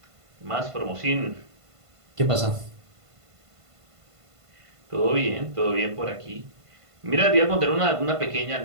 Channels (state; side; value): late; left; 1.5 ms